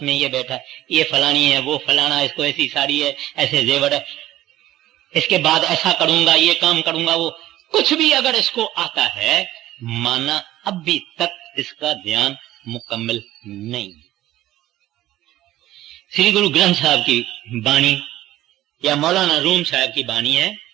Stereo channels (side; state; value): left; quieter; 14.7 dB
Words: में ये बैठा है, ये फलानी है, वो फलाना, इसको ऐसी साड़ी है, ऐसे जेवर है, इसके बाद ऐसा करूंगा, ये काम करूंगा, वो कुछ भी अगर इसको आता है, माना अभी तक इसका ध्यान मुकम्मल नहीं। श्री गुरु ग्रंथ साहब की बाणी या मौलाना रूम साहब की बाणी है,